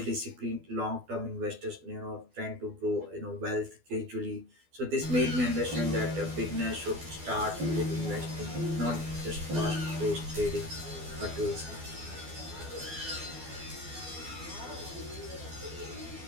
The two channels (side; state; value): left; late; 12 ms